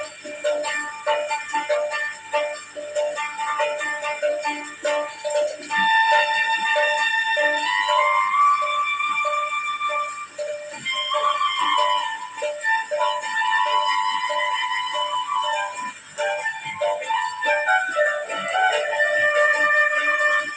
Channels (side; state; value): both; identical; correlation 1.00